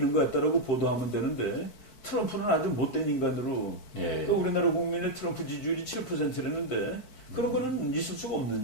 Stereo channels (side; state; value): right; late; 4.5 ms